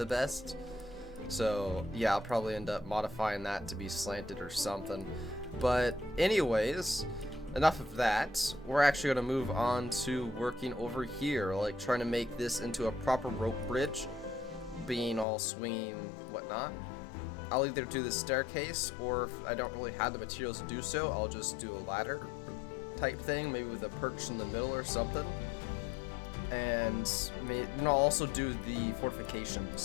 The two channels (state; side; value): drops out; right; at 15.2 s